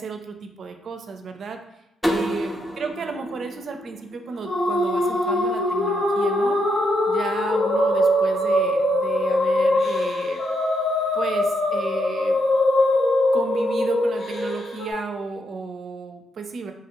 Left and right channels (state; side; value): normal; both; correlation 0.79